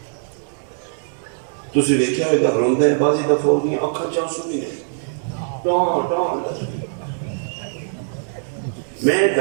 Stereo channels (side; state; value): left; silent; digital silence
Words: تسی ویکھیا ہوئے گا روندہ ہے بازی دفعہ ہو گئی آنکھاں چانسو بھی نہیں ٹان ٹان میں